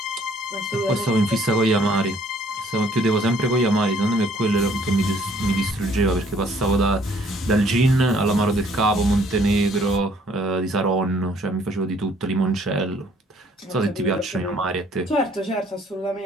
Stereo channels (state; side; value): normal; both; correlation 0.61